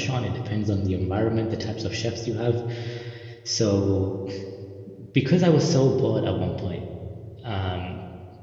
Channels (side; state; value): both; identical; correlation 1.00